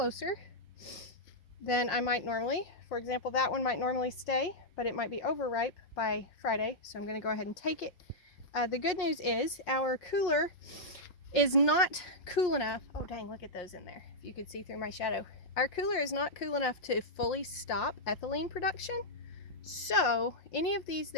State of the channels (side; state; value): right; late; 5.6 ms